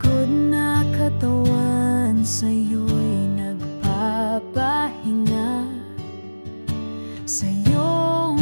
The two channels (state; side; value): inverted; both; correlation -1.00